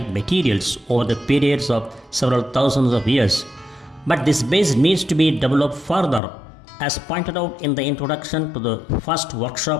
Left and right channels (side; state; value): right; drops out; at 6.2 s